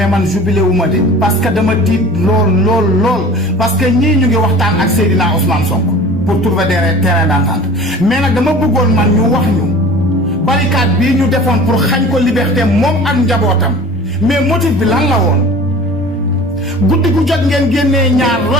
man jubilé wu ma de parce que dama tiit lool parce que ñii ñu ngi waxtaan ak Seydina Ousmane Sonko pour trouver des terrains d'entente mais nag dama bëggoon man ñu wax ñu barricade bii ñu defoon pour xañ ko liberté moom ak njabootam mais motif bi lan la woon guddi gu jot ngeen génnee ñaar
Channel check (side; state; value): both; normal; correlation 0.42